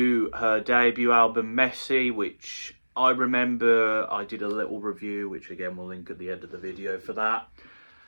her debut album, Messy, which I remember I did a little review, which again we'll link at the end of the video for that.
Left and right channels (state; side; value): inverted; both; correlation -1.00